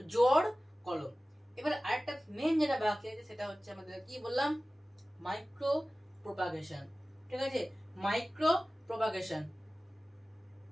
জোড় কলম। এবার আরেকটা মেন যেটা বাকি আছে সেটা হচ্ছে আমাদের কি বললাম, মাইক্রো প্রপাগেশন। ঠিক আছে, মাইক্রো প্রপাগেশন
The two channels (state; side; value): normal; both; correlation 0.97